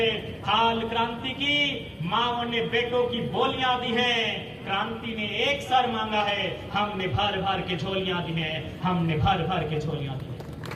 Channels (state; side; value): identical; both; correlation 1.00